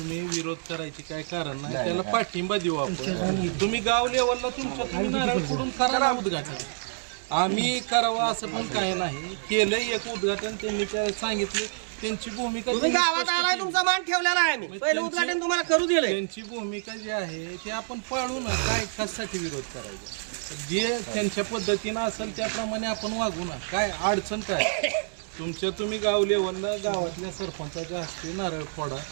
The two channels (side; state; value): left; silent; digital silence